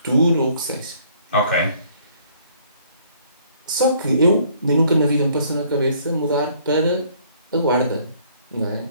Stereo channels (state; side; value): inverted; both; correlation -0.61